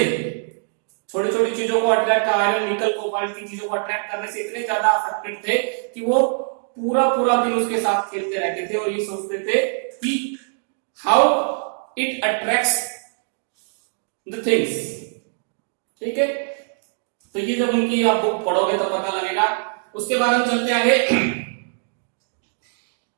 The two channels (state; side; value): silent; left; 64 dB below the other